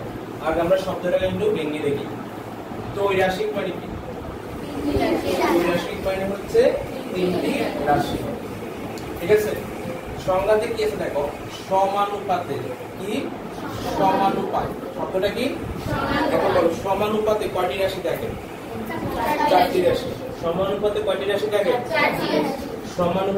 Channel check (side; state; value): both; identical; correlation 1.00